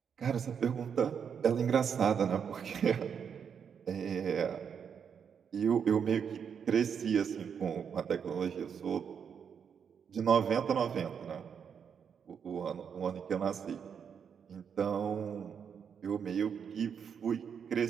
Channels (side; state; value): left; quieter; 7.2 dB